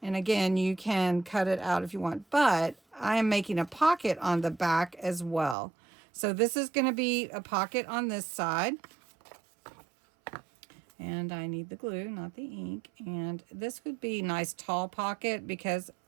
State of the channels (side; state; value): left; drops out; at 5.6 s